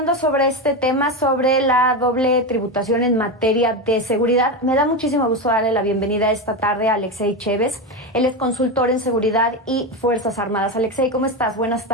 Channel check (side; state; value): both; normal; correlation 0.16